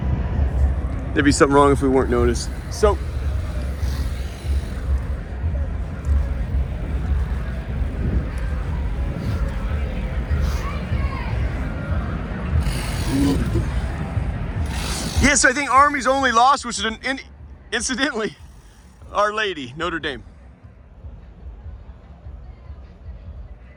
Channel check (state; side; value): identical; both; correlation 1.00